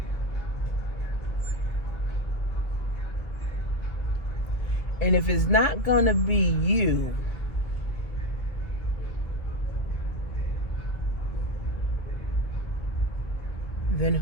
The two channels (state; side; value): late; right; 1.3 ms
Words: And if it's not gonna be you, then